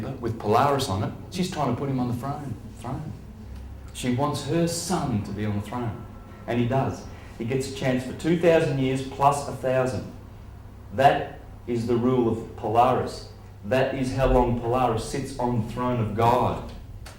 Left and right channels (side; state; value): both; identical; correlation 1.00